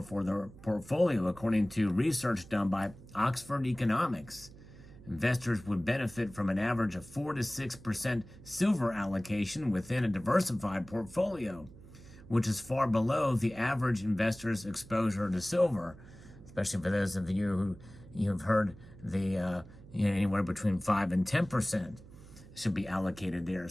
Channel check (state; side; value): noise; right; hum, 19 dB below the sound